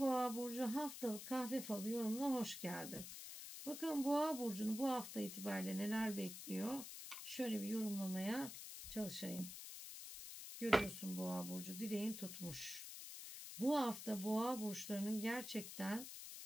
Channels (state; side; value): noise; left; hiss, 9 dB below the sound